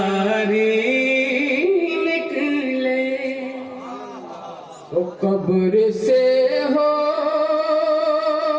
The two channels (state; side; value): identical; both; correlation 1.00